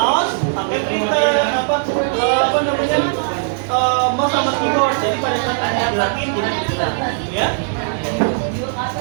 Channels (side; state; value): left; silent; digital silence